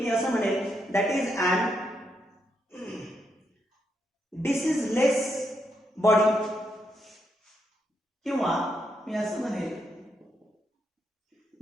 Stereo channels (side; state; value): both; normal; correlation 0.80